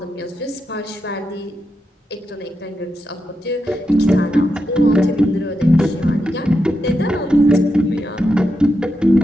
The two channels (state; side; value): normal; both; correlation 0.86